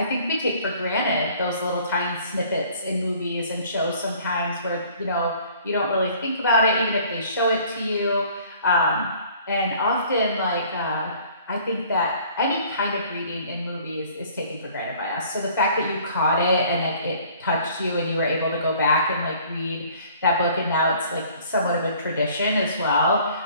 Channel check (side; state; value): both; inverted; correlation -0.54